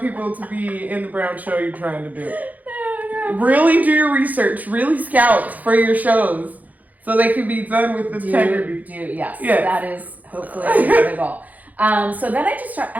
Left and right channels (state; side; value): late; left; 0.079 ms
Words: to be in the brown show you're trying to do. No. Really do your research. Really scout for your shows so they can be done with integrity. Yes. That is hopefully the goal. So then I just started,